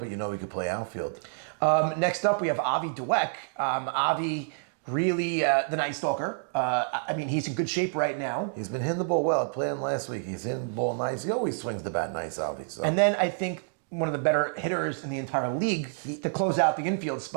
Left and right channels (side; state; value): left; silent; digital silence